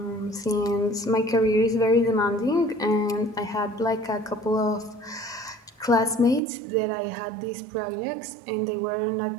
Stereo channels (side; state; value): left; drops out; at 6.4 s